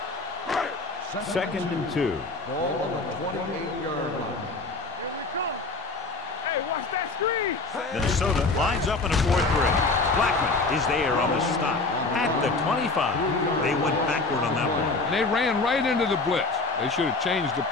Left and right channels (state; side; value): quieter; right; 3.7 dB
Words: Second and 2. Ball on the 28-yard line. Here we come. Hey, watch that screen. Minnesota lines up in a 4-3. Blackman is there on the stop at the 25. They went backward on that one. And they ran right into the blitz. They should have changed the